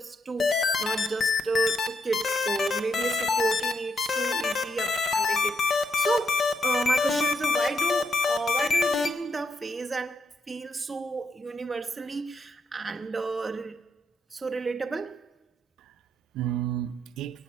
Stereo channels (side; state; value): both; normal; correlation 0.78